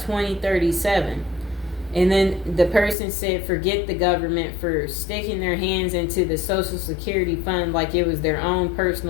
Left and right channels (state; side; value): drops out; right; at 3.0 s